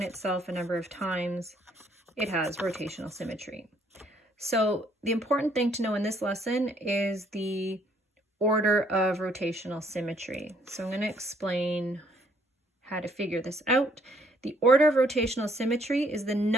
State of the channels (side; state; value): both; normal; correlation 0.66